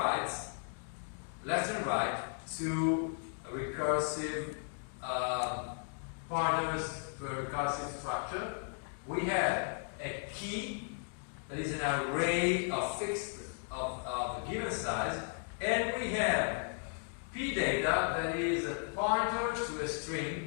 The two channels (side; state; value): right; silent; 54 dB below the other